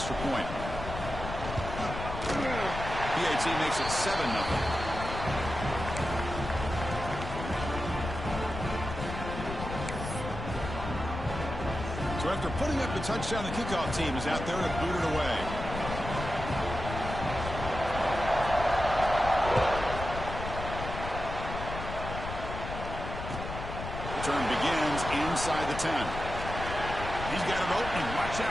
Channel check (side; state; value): left; noise; rumble, 7 dB below the sound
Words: point. PAT makes it 7-0. So after putting up the touchdown, the kickoff team is out there to boot it away. Return begins inside the 10. He's got an opening. Watch